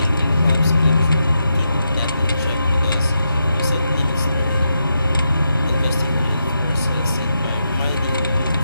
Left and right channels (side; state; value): both; inverted; correlation -0.84